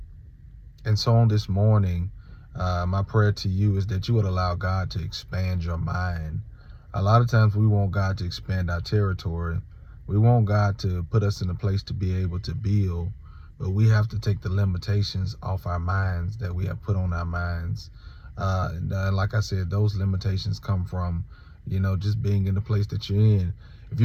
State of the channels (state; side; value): identical; both; correlation 1.00